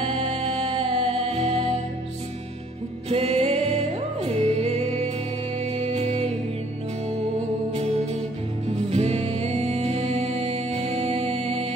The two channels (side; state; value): both; normal; correlation 0.60